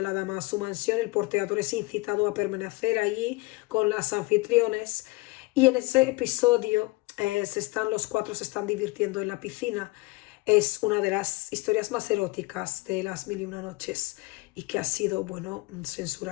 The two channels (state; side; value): quieter; right; 22.7 dB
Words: la dama a su mansión, el porteador es incitado a permanecer allí con las anfitriones, y en ese episodio los cuatro se están divirtiendo en la piscina. Es una de las historias más eróticas de las mil y una noches y que ha sido, bueno,